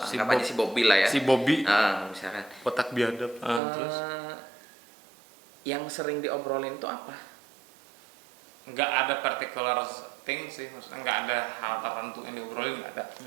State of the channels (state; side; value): drops out; left; at 3.6 s